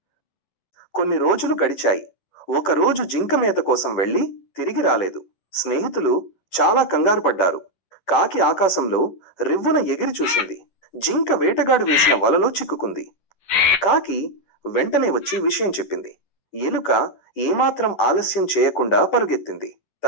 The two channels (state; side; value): late; right; 11 ms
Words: కొన్ని రోజులు గడిచాయి. ఒకరోజు జింక మేత కోసం వెళ్లి తిరిగి రాలేదు. స్నేహితులు చాలా కంగారు పడ్డారు. కాకి ఆకాశంలో రివ్వున ఎగిరి చూసింది. జింక వేటగాడు వేసిన వలలో చిక్కుకుంది. కాకి వెంటనే వచ్చి విషయం చెప్పింది. ఎలుక ఏమాత్రం ఆలస్యం చేయకుండా పరుగెత్తింది.